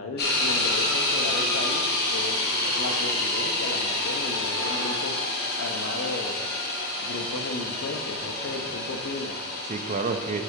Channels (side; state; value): both; normal; correlation 0.00